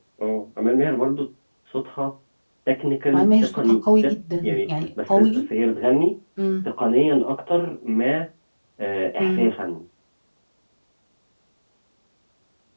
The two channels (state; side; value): inverted; both; correlation -1.00